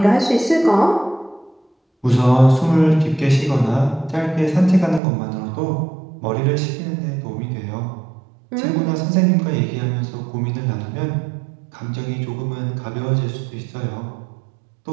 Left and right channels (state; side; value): drops out; left; at 5.0 s